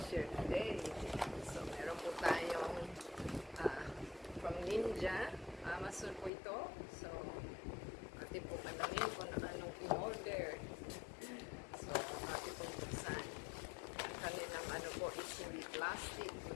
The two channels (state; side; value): drops out; right; at 6.3 s